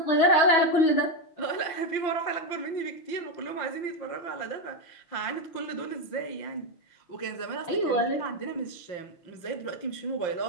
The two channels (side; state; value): right; late; 5.7 ms